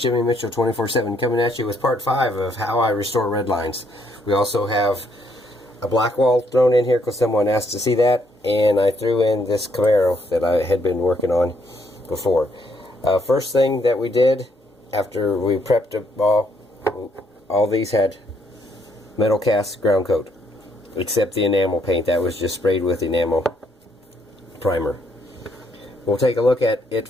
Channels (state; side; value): normal; both; correlation 0.71